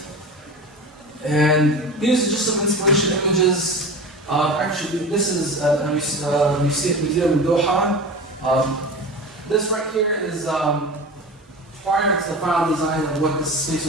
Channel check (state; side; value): normal; both; correlation 0.31